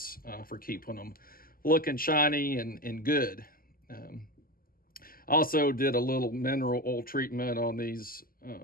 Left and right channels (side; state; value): right; late; 0.42 ms